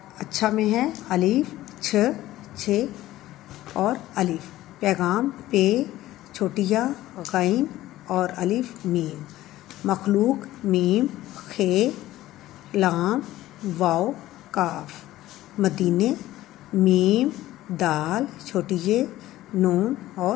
अच्छा में है अलीफ, छ, छे और अलीफ। पैगाम पे, छोटिया, गैन और अलीफ मीम। मखलूक मीम, खे, लाम, वाव, काफ। मदीने मीम, दाल, छोटी ये, नून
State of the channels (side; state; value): right; quieter; 15.3 dB